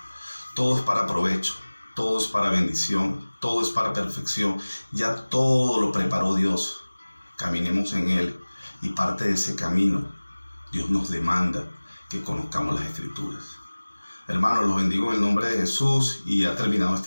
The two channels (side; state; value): both; inverted; correlation -1.00